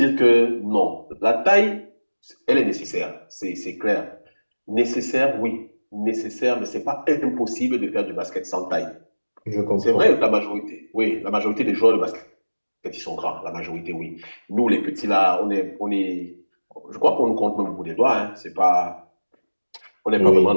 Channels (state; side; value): inverted; both; correlation -1.00